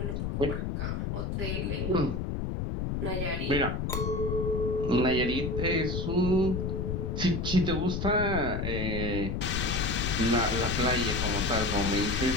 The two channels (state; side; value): noise; left; rumble, 1 dB below the sound